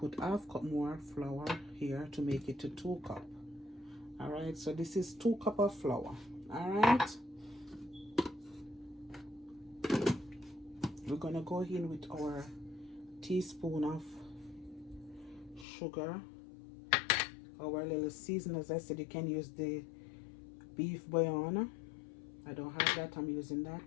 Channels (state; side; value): drops out; right; at 15.7 s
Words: half cup more flour here to make it to 2 cup. All right, so this is 2 cup of flour. All right, we're gonna go in with our teaspoon of sugar, our little season. As I said, you can use the beef bouillon. I don't have that, I'm using that.